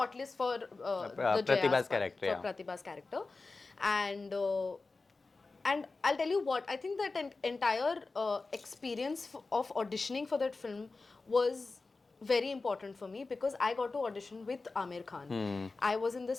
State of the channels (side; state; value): right; quieter; 3.8 dB